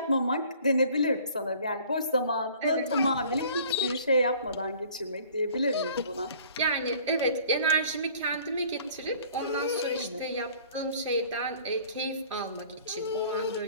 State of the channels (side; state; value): both; inverted; correlation -0.52